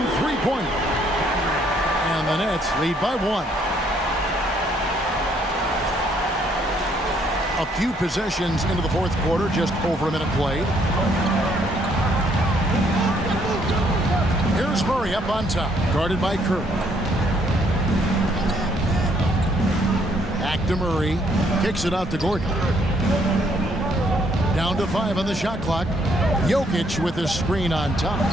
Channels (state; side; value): normal; both; correlation 0.68